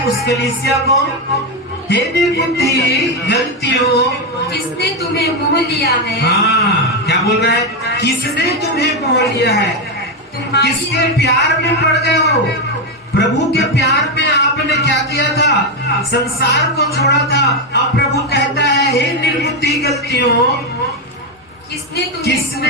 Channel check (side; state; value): both; normal; correlation 0.07